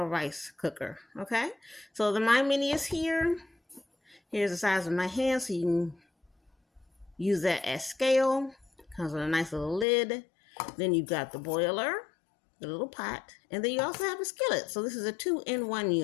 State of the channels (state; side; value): drops out; right; at 9.9 s